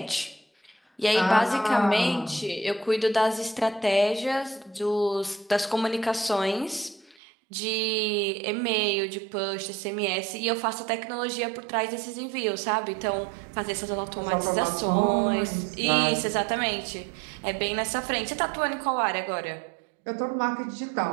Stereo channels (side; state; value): left; drops out; at 7.2 s